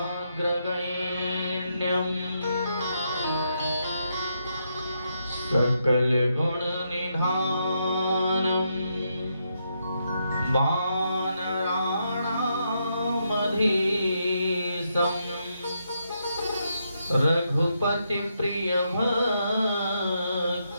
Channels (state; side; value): inverted; both; correlation -0.80